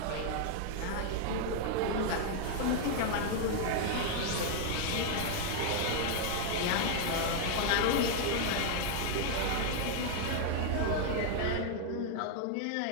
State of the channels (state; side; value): different; both; correlation 0.00